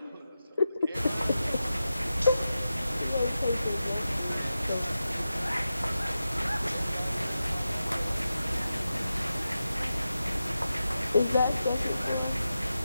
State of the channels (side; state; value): both; inverted; correlation -0.92